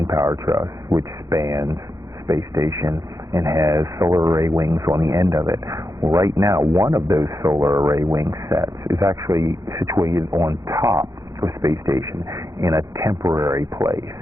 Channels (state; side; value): late; left; 0.15 ms